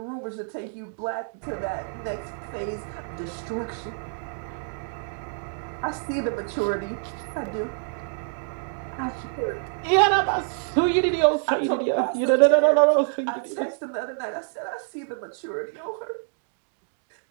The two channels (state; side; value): silent; left; digital silence